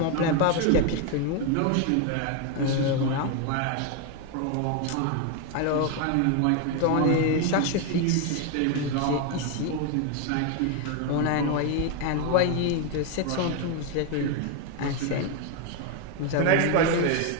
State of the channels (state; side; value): different; both; correlation 0.01